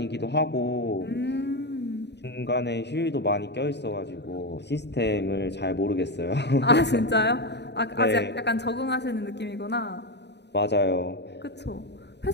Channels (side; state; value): right; late; 0.50 ms